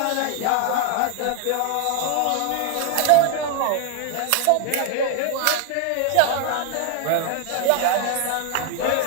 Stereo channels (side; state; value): both; different; correlation 0.00